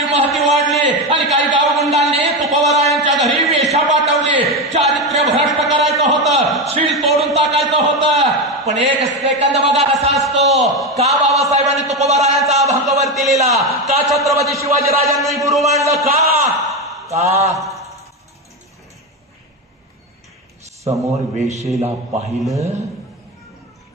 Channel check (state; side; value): normal; both; correlation 0.15